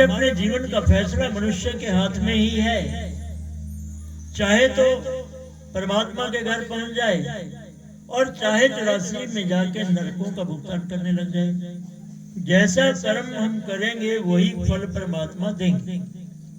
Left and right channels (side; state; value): both; identical; correlation 1.00